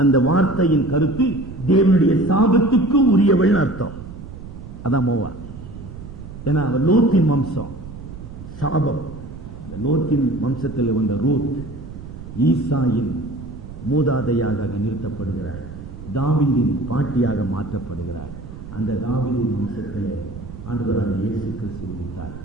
அந்த வார்த்தையின் கருத்து தேவனுடைய சாபத்துக்கு உரியவள் அர்த்தம். அதான் மோவாப். ஏன்னா அவள் லோத்தின் வம்சம், சாபம். லோத்தின் வம்சத்தில் வந்த ரூத் ஈசாயின் மூதாதையாக நிறுத்தப்படுகிறார். தாவீதின் பாட்டியாக மாற்றப்படுகிறார். அந்த தாவீதின் வம்சத்தில் ஆண்டவராக இயேசு கிறிஸ்து உதித்தார்.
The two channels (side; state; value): right; noise; rumble, 13 dB below the sound